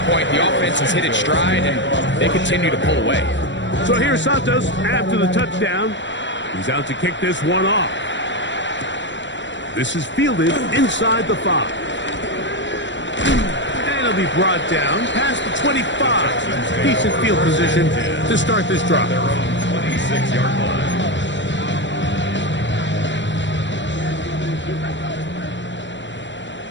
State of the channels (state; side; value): late; right; 0.53 ms